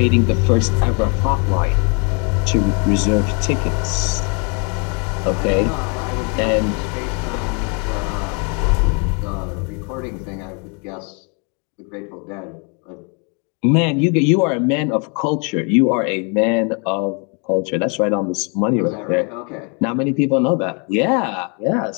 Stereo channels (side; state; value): right; quieter; 35.6 dB